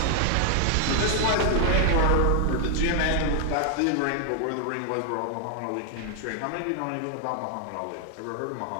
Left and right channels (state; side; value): different; both; correlation 0.00